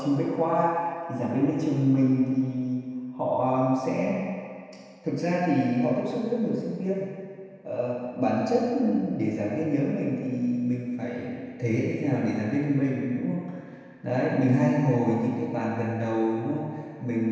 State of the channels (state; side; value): identical; both; correlation 1.00